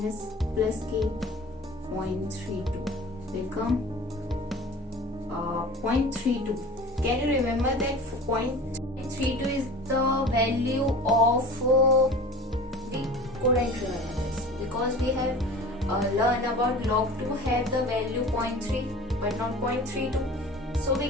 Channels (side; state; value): both; normal; correlation 0.39